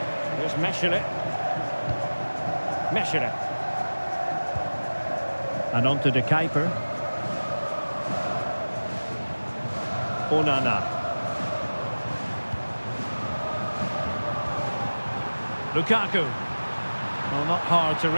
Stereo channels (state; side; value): inverted; both; correlation -1.00